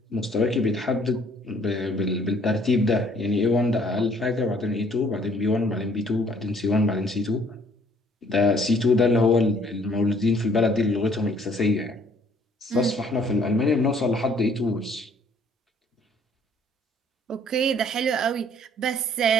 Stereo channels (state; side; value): normal; both; correlation 0.60